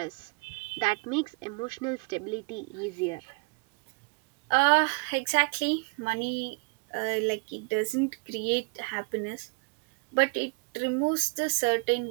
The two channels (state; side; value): quieter; left; 32.6 dB